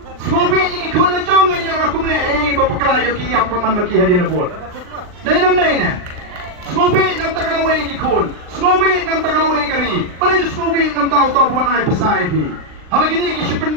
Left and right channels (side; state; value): left; late; 39 ms